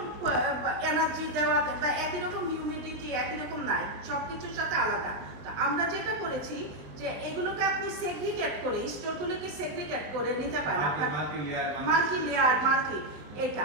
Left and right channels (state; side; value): late; left; 20 ms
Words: এনার্জি দেওয়া বা একই রকম হিউমিডিটি একই রকম নাই, সবকিছুর সাথে আলাদা। তো আমরা যেটা করেছি যে এগুলোকে আপনি সেগ্রিগেট করে স্টোরগুলোকে সেগ্রিগেট করে নিতে পারেন, মাল্টি লেয়ার মাল্টি এটা।